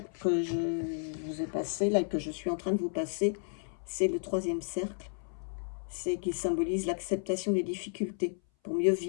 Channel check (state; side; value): silent; right; 56 dB below the other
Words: que je vous ai passées, là, que je suis en train de vous passer, c'est le 3e cercle. C'est qui symbolise l'acceptation des difficultés pour mieux